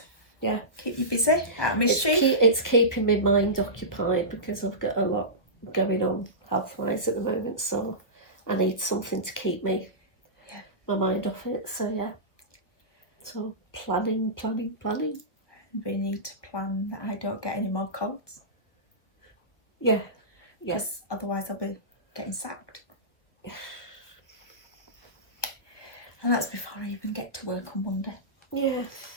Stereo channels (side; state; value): right; late; 1.2 ms